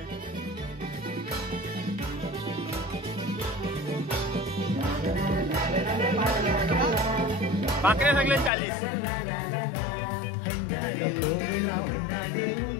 भाकरे सगळे 40.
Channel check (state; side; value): drops out; right; at 8.5 s